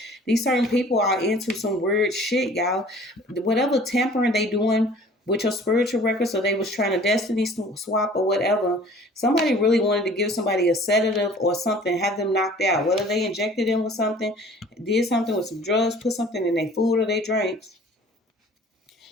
These certain people are into some weird shit, y'all. Whatever tampering they doing with your spiritual records, so they was trying to destiny swap or whatever. Somebody really wanted to give somebody a sedative or something, have them knocked out. Whether they injected them with something, did something with some drugs, put something in their food or their drinks.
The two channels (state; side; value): normal; both; correlation 0.49